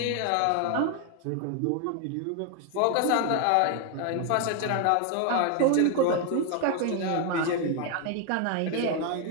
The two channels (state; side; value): different; both; correlation 0.01